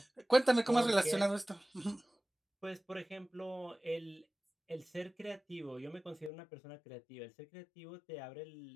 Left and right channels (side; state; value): right; drops out; at 6.3 s